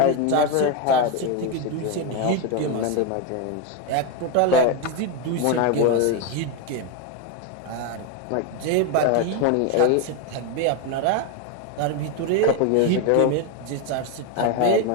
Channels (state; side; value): different; both; correlation 0.02